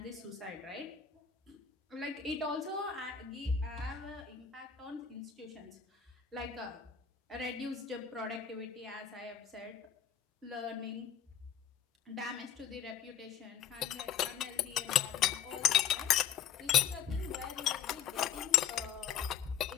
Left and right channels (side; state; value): right; quieter; 8.5 dB